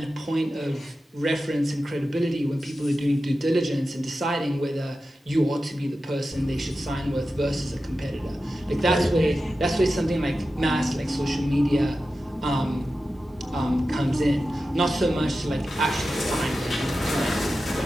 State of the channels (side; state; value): both; normal; correlation 0.92